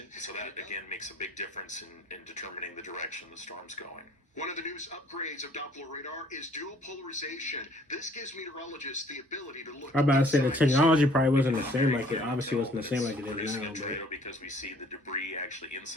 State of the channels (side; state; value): both; normal; correlation 0.57